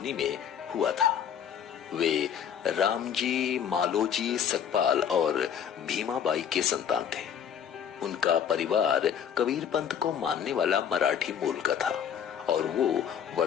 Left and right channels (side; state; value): right; quieter; 8.5 dB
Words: में हुआ था। वे रामजी मालोजी सकपाल और भीमाबाई के संतान थे। उनका परिवार कबीर पंथ को मानने वाला मराठी मूल का था और वो